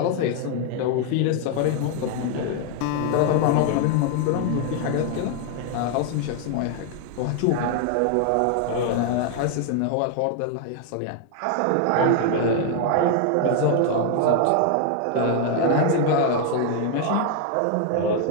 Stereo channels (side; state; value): both; different; correlation 0.00